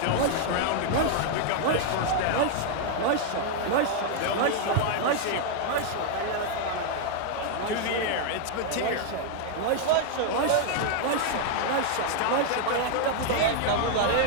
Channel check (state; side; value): different; both; correlation 0.00